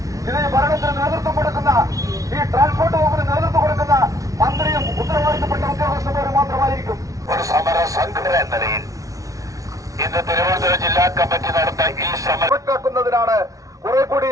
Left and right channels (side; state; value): left; late; 0.17 ms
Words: ഇത് ഭരണത്തിന് നേതൃത്വം കൊടുക്കുന്ന, ഈ ട്രാൻസ്പോർട്ട് വകുപ്പിന് നേതൃത്വം കൊടുക്കുന്ന മന്ത്രിയും ഉത്തരവാദിത്തപ്പെട്ട ഉദ്യോഗസ്ഥന്മാരും മാത്രമായിരിക്കും. ഒരു സമര സംഘടന എന്ന നിലയിൽ ഇന്ന് തിരുവനന്തപുരം ജില്ലാ കമ്മിറ്റി നടന്ന ഈ സമരമാക്കുന്നതിനാണ്, കുറെ